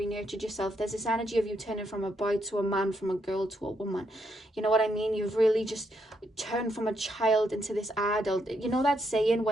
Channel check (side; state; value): both; normal; correlation 0.78